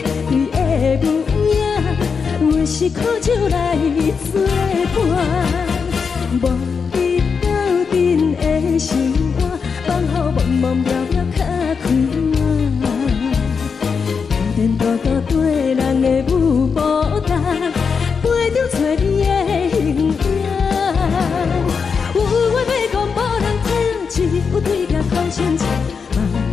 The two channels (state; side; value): quieter; right; 5.7 dB